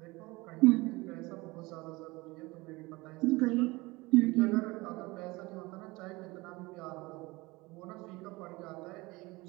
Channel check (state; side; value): quieter; left; 22.5 dB